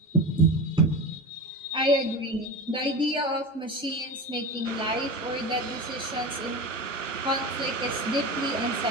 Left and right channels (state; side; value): normal; both; correlation 0.26